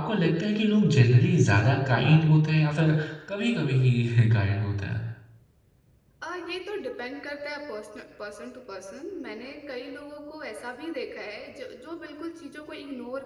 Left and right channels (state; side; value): identical; both; correlation 1.00